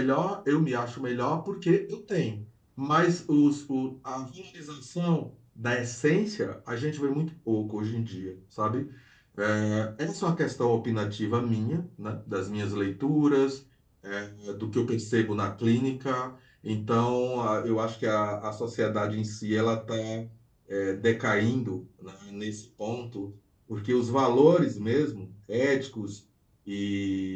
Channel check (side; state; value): both; identical; correlation 1.00